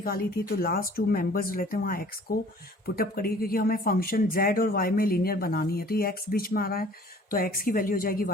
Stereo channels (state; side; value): normal; both; correlation 0.52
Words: थी तो लास्ट टू मेंबर्स रहते हैं वहाँ x को पुटअप करिए, क्योंकि हमें फंक्शन z और y में लीनियर बनानी है। तो ये x बीच में आ रहा है तो x की वैल्यू हो जाएगी